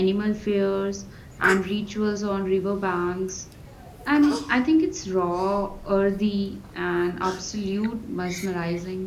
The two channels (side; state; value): both; identical; correlation 1.00